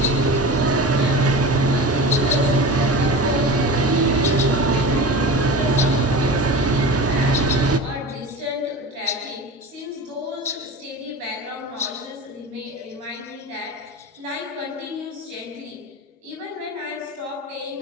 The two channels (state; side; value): normal; both; correlation 0.31